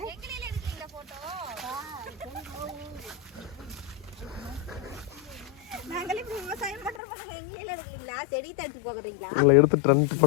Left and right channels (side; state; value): right; drops out; at 7.0 s